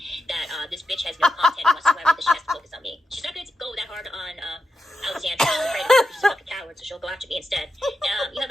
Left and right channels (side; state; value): both; normal; correlation 0.88